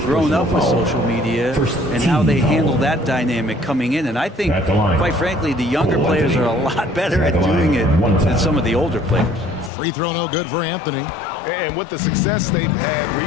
grown up with social media and how they handle that dynamic coming in. And I think, quite frankly, the younger players are a lot better at doing it than some of the older players. Free throw no good for Anthony. And with the success they've had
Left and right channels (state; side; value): drops out; right; at 9.7 s